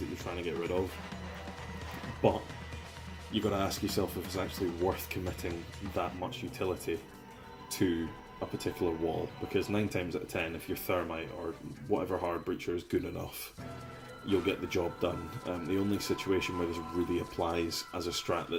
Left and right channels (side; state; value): both; identical; correlation 1.00